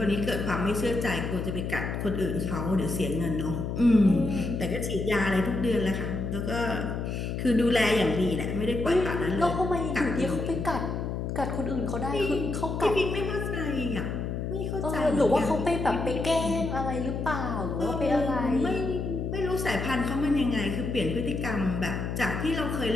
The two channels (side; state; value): left; noise; hum, 3 dB below the sound